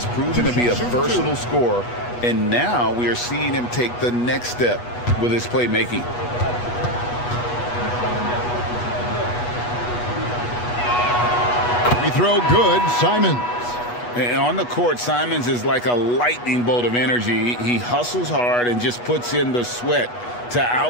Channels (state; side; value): late; right; 8.2 ms